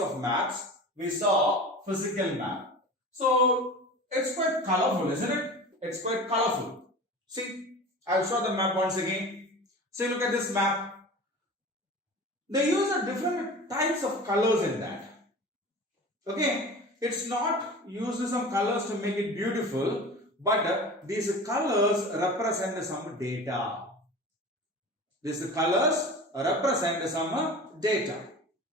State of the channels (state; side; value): normal; both; correlation 0.35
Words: maps, we saw physical map. So it's quite colorful, isn't it? It's quite colorful. See, I'll show the map once again. See, look at this map. They use different types of colors in that. Okay, it's not used some colors to make it beautiful, but these colors represent some data. These colors represent some data.